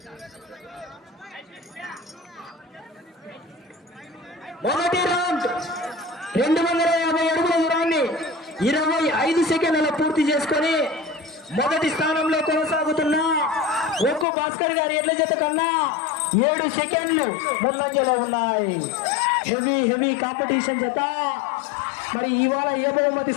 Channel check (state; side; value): drops out; right; at 14.2 s